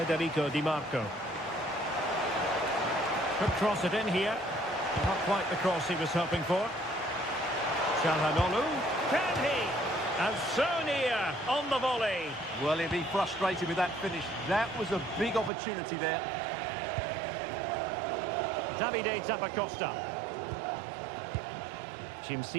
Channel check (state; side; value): drops out; left; at 15.5 s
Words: Di Marco. Could cross it in here. Not quite the cross he was hoping for. Çalhanoğlu. Can he? And so near on the volley. Well, he'll be frustrated with that finish. That was a big opportunity there. Davide Zappacosta.